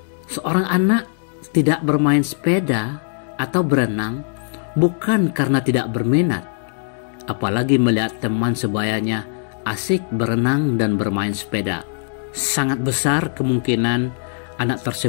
Seorang anak tidak bermain sepeda atau berenang bukan karena tidak berminat, apalagi melihat teman sebayanya asik berenang dan bermain sepeda. Sangat besar kemungkinan anak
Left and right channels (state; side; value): silent; right; digital silence